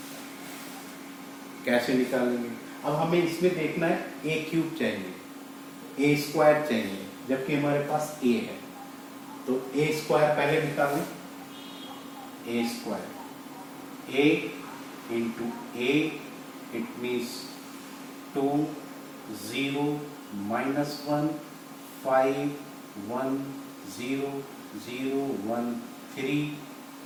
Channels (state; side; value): identical; both; correlation 1.00